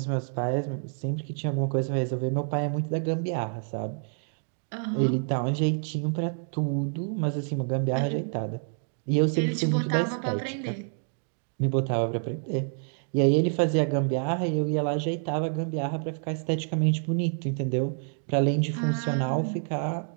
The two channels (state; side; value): silent; left; 59 dB below the other